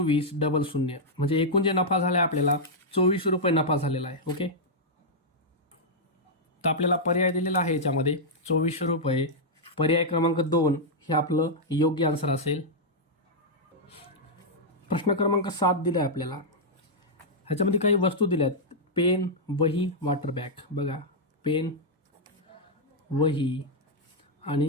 00. म्हणजे एकूण जे नफा झाला आहे आपल्याला 24 रुपये नफा झालेला आहे. ओके. तर आपल्याला पर्याय दिलेला आहे याच्यामध्ये 24 रुपये. पर्याय क्रमांक 2 हे आपलं योग्य आन्सर असेल. प्रश्न क्रमांक 7 दिला आहे आपल्याला. ह्याच्यामध्ये काही वस्तू दिल्या आहेत. पेन, वही, वॉटर बॅग. बघा पेन, वही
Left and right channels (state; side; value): normal; both; correlation -0.06